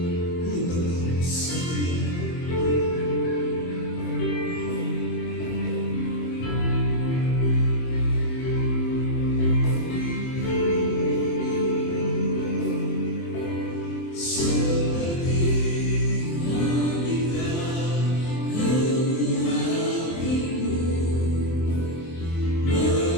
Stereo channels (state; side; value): late; right; 24 ms